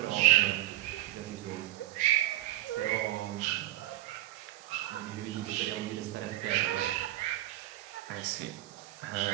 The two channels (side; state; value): left; quieter; 15.8 dB